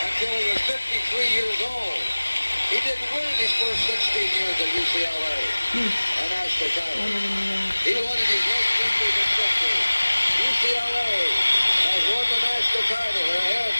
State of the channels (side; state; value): both; inverted; correlation -1.00